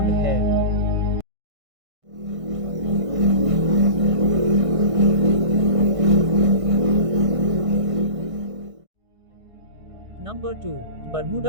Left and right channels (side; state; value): left; late; 1.6 ms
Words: है। Number 2,